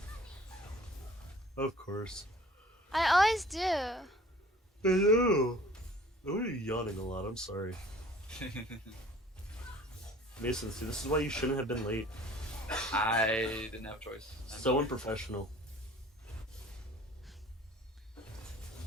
Of course. I always do. I know. Oh, you're yawning a lot. I'm sorry. Mason, see, this is why you shouldn't have been late. I didn't have a choice. I'm So sorry. unprofessional.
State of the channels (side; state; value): both; normal; correlation 0.49